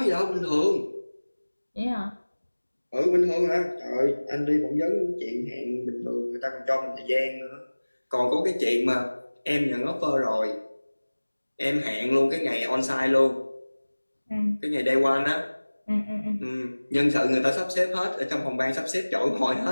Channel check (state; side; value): inverted; both; correlation -1.00